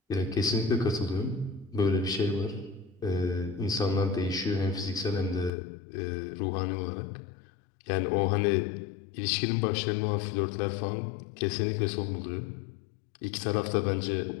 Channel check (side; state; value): right; drops out; at 5.5 s